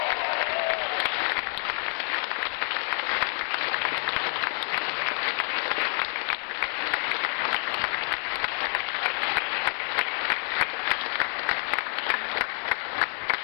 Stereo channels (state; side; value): silent; right; 59 dB below the other